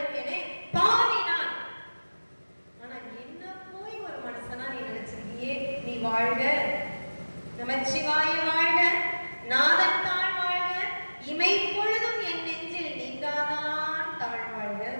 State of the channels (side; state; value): both; inverted; correlation -1.00